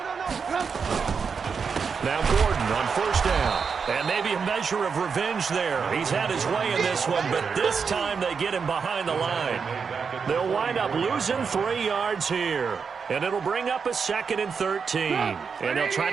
Now Gordon on first down. And maybe a measure of revenge there. He's had his way in this one, but this time they get him behind the line. They'll wind up losing 3 yards here. And it'll bring up a 2nd and 13. And they'll try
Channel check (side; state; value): left; quieter; 5.8 dB